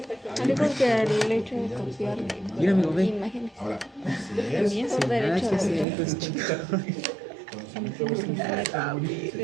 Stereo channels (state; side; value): drops out; left; at 5.9 s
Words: Yo creo que el hecho de copiar Mira, amigo, ve. imágenes ahora, si es también por Nada derecho que de hacer, autor. pues, chica. conocimiento vecinal, se